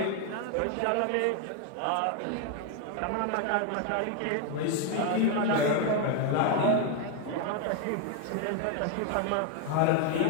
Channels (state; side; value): different; both; correlation 0.01